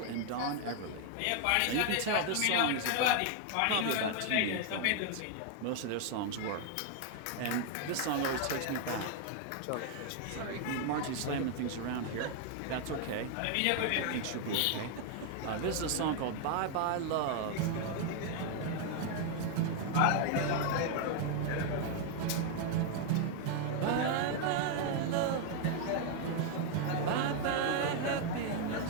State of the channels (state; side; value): different; both; correlation 0.00